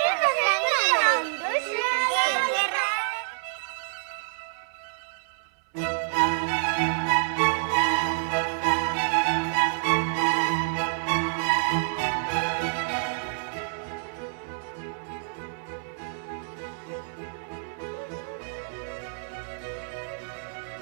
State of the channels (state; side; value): silent; left; 60 dB below the other